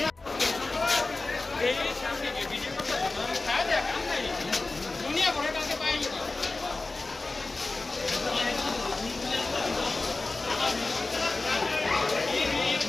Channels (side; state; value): right; quieter; 3.4 dB